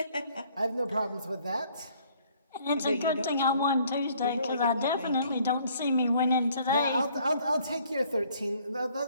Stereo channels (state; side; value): inverted; both; correlation -0.61